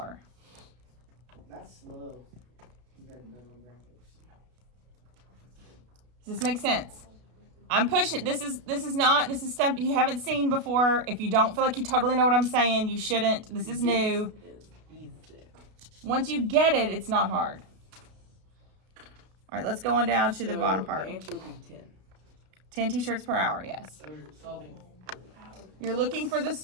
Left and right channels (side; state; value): left; late; 32 ms